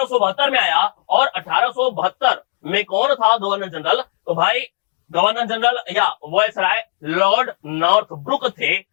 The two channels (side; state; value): right; silent; digital silence